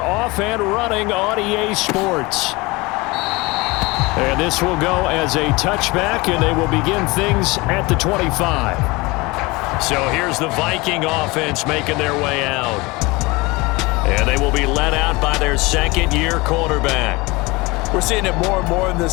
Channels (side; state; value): right; quieter; 23.7 dB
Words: off and running on EA Sports. And this will go as a touchback, and they will begin things at the 25. So here's the Viking offense making their way out. And they will be led out by their second-year quarterback. We're seeing it more and more in